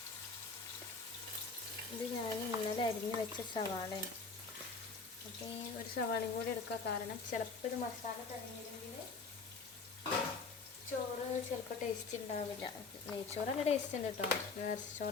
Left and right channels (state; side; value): quieter; right; 4.5 dB